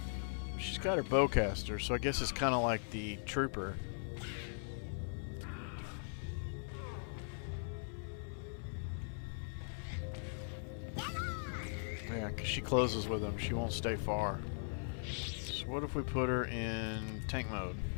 She's got her bowcaster, so I guess it's kind of like the trooper. Yeah, because she closes with them. She won't stay far. So what if we put her in tank mode?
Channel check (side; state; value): right; silent; 51 dB below the other